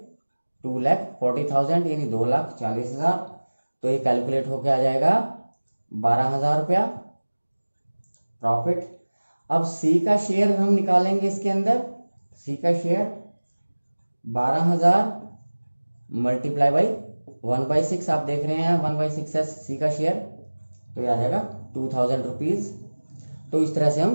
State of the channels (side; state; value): both; inverted; correlation -1.00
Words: 2,40,000 यानी 2,40,000। तो ये कैलकुलेट होके आ जाएगा 12,000 रुपया प्रॉफिट। अब सी का शेयर हम निकालेंगे इसके अंदर, सी का शेयर 12,000 मल्टीप्लाई बाई 1/6, आप देख रहे हैं 1/6 है सी का शेयर, तो ये आ जाएगा 2,000 रुपीज। तो इस तरह से